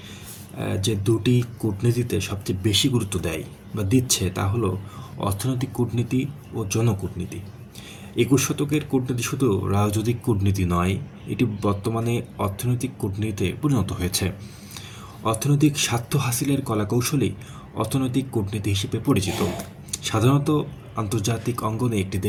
যে দুটি কূটনীতিতে সবচেয়ে বেশি গুরুত্ব দেয় বা দিচ্ছে তা হলো অর্থনৈতিক কূটনীতি ও জনকূটনীতি। 21 শতকের কূটনীতি শুধু রাজনৈতিক কূটনীতি নয়, এটি বর্তমানে অর্থনৈতিক কূটনীতিতে পরিণত হয়েছে। অর্থনৈতিক স্বার্থ হাসিলের কলাকৌশলই অর্থনৈতিক কূটনীতি হিসেবে পরিচিত। সাধারণত আন্তর্জাতিক অঙ্গনে একটি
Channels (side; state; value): both; identical; correlation 1.00